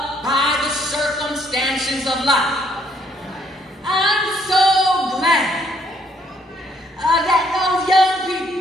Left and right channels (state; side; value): normal; both; correlation 0.68